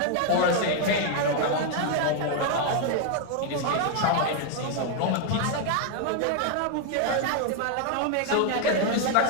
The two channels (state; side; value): different; both; correlation 0.00